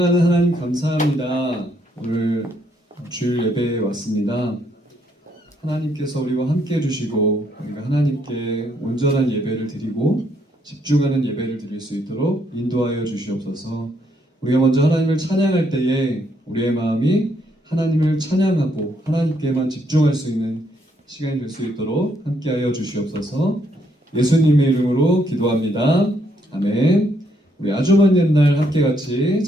하나님 감사합니다. 오늘 주일 예배에 왔습니다. 하나님께서 우리와 함께 해주시고 우리가 하나님께 온전한 예배를 드리고 집중하는 예배를 드릴 수 있도록 인도하여 주시옵소서. 우리가 먼저 하나님을 찬양할 때에 우리의 마음이 하나님을 찬양하고 하나님께만 집중할 수 있는 시간이 될 수 있도록 함께하여 주시옵소서. 예수님의 이름으로 기도합니다. 아멘. 우리 아주 먼 옛날 함께 같이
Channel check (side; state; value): both; normal; correlation 0.72